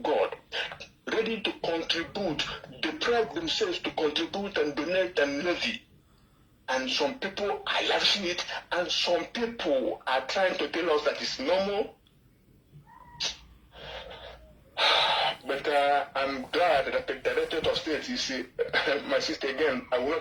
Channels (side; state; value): both; identical; correlation 1.00